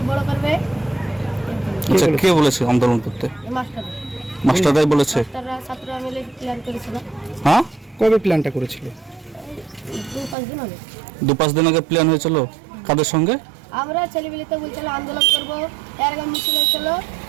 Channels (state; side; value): drops out; left; at 10.4 s